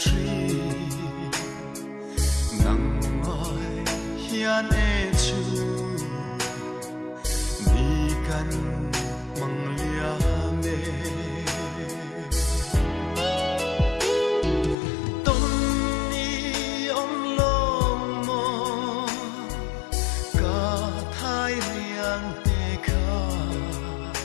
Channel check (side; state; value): right; drops out; at 14.8 s